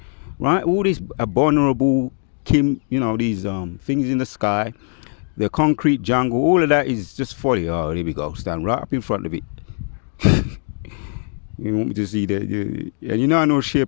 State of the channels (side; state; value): right; silent; 57 dB below the other